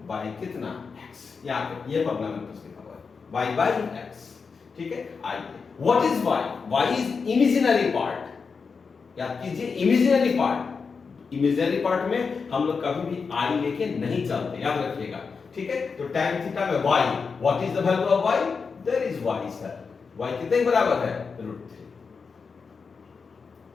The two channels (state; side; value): quieter; right; 5.2 dB